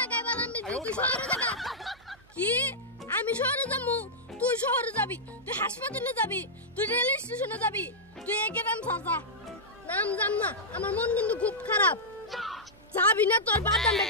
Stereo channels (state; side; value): noise; right; hum, 28 dB below the sound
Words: বাদাম বেচি, তুই শহরে যাবি। কি আমি শহরে যাবো? তুই শহরে যাবি, তুই হাসপাতালে যাবি, তুই রেল স্টেশনে যাবি, তুই একে নাম সাজা। নাম জান না, আমার মন কিন্তু খুব খারাপ। যাবি না তোর বাদাম